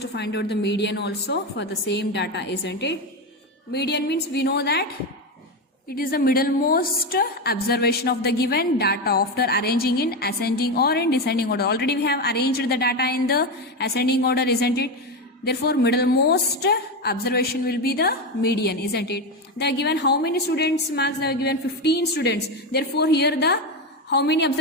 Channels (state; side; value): normal; both; correlation 0.13